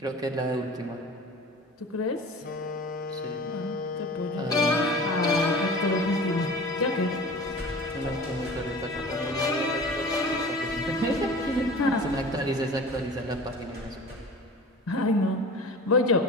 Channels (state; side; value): normal; both; correlation 0.39